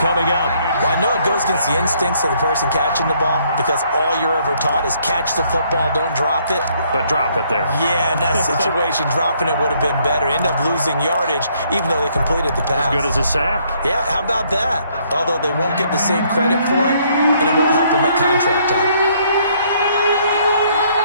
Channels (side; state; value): both; inverted; correlation -0.67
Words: up. Well, I know it goes against the instincts of the person catching the ball because all you're ever taught is catch the football, don't drop it. But drop it there. Yeah, in that situation, dropping it would have been better. End up losing yardage, even though they completed the pass. As good as a sack. Yeah, how about that? Although they won't get the same credit for it, and it won't help them at contract time.